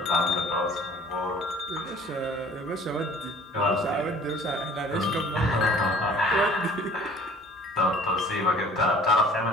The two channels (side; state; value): both; normal; correlation 0.51